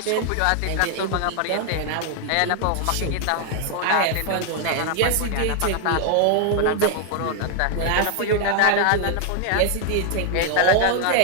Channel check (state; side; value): different; both; correlation 0.00